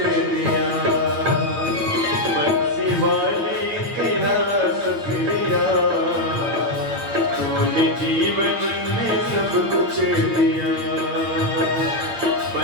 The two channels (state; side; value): late; left; 8.8 ms